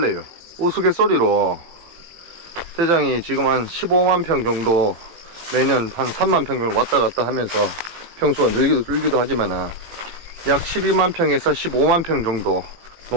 우스갯소리로 대장이 지금 한 15만 평 정도 매년 한 3만 평 정도 왔다 갔다 하면서 평수가 늘기도 하지만 약 12만 평에서 15만 평 정도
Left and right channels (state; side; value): late; left; 18 ms